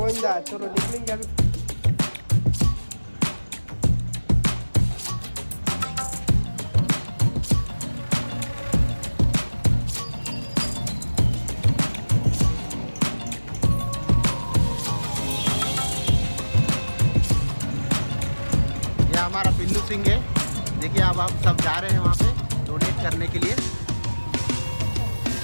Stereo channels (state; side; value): inverted; both; correlation -1.00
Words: चलो निकलेंगे. हमारा पिल्लू सिंह है. देखिए अब आप सब जा रहे हैं वहाँ पे डोनेट करने के लिए.